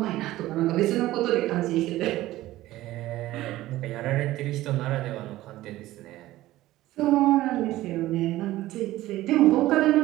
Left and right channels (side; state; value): left; quieter; 16.0 dB